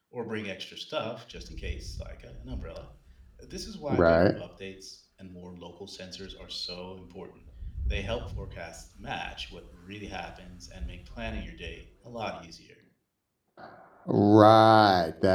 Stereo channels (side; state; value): both; identical; correlation 1.00